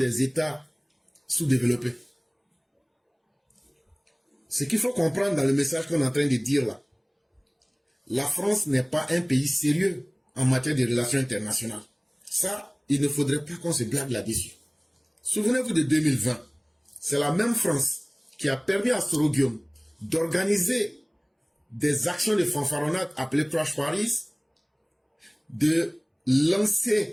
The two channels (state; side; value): identical; both; correlation 1.00